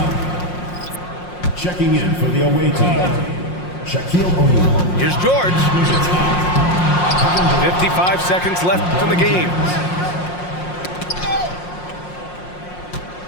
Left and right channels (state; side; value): late; right; 5.6 ms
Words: Checking in for the away team. Shaquille O'Neal. Here's George. 55 seconds left in the game.